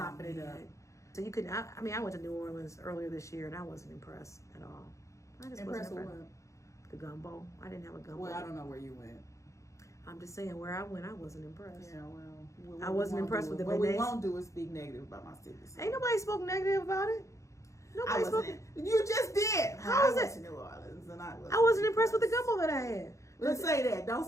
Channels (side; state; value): right; late; 0.15 ms